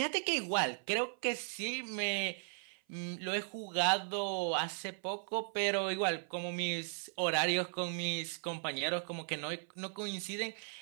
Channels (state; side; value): silent; left; 53 dB below the other